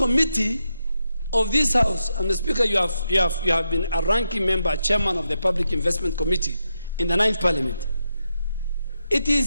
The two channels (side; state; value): both; inverted; correlation -0.85